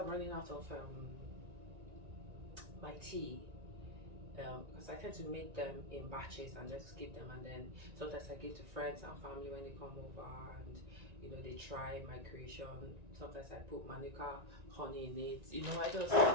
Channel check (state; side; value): late; left; 1.9 ms